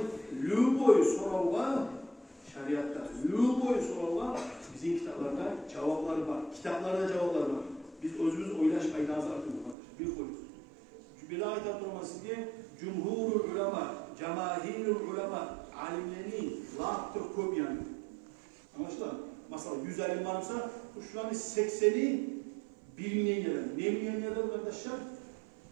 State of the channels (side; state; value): left; drops out; at 9.8 s